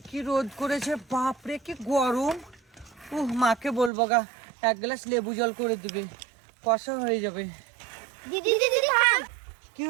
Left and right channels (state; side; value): drops out; left; at 3.9 s